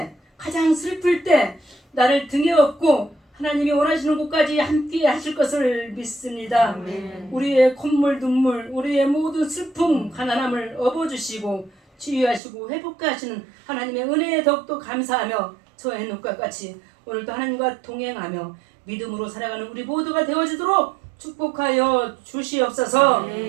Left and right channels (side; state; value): left; drops out; at 12.4 s